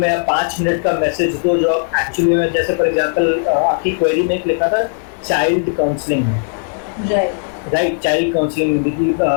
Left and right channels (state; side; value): silent; right; 64 dB below the other